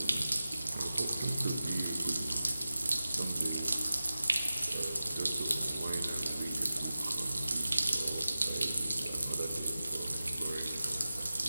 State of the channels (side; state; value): both; inverted; correlation -0.95